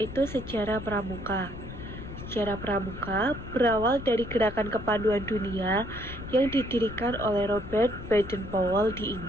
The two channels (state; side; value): noise; left; rumble, 11 dB below the sound